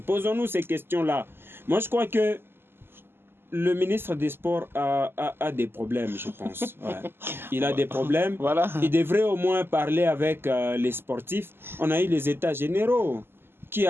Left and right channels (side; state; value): left; late; 0.11 ms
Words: Posons-nous ces questions-là. Moi, je crois que le ministre des Sports a des problèmes, je pense. Ouais. Il a des problèmes. Voilà. Il devrait au moins parler avec les sportifs. On a eu les états généraux qui